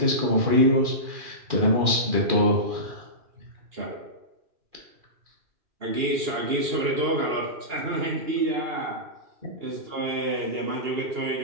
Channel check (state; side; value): late; left; 2.4 ms